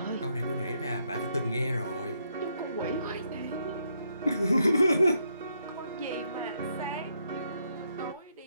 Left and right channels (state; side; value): inverted; both; correlation -0.76